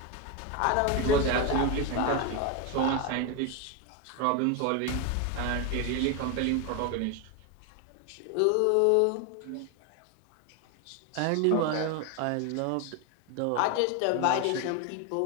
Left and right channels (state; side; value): different; both; correlation 0.02